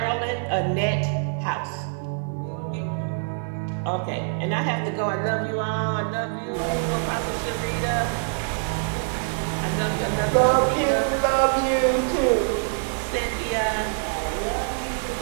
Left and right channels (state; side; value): silent; left; digital silence